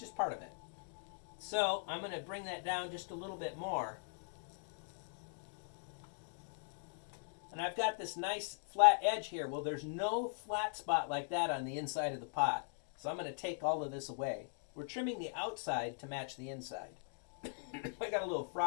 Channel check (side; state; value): right; silent; digital silence